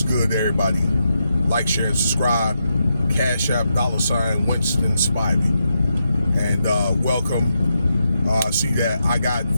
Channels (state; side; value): inverted; both; correlation -0.84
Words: good, everybody? Like, share, and subscribe. Cash App, $ Winston Spivey. And welcome. I see that I got